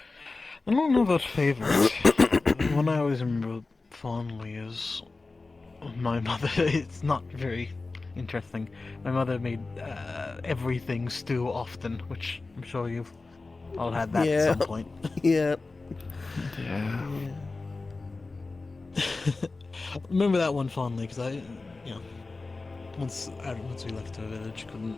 I don't know about favorite. One I always remember fondly is my mother. It's not very interesting. My mother made everything stew often, which I'm sure you've all had that at some point. Yeah. Yeah. Remember that one fondly because once we left our village, couldn't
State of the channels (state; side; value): quieter; right; 3.6 dB